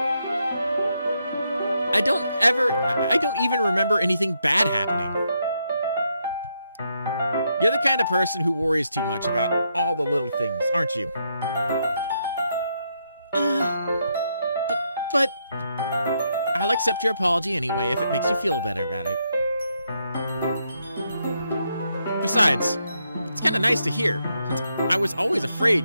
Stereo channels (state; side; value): inverted; both; correlation -0.79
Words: I don't even remember anything bad happening. You're the kind of person who worries too much about all the little things, aren't you? But I'll accept your apology anyway if it makes you feel better about it. Besides, it's kind of nice to hear, since I was always